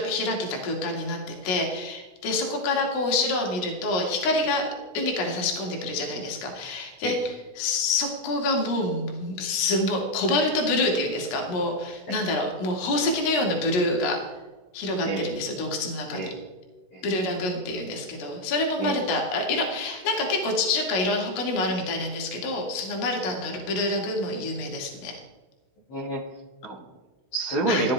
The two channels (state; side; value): late; right; 16 ms